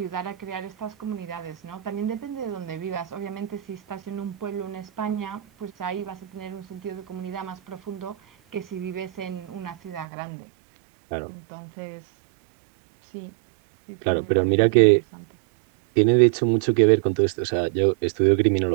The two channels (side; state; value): left; drops out; at 10.1 s